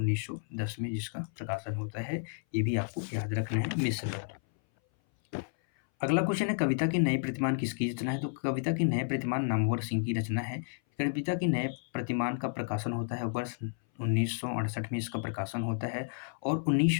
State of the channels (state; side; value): silent; right; 57 dB below the other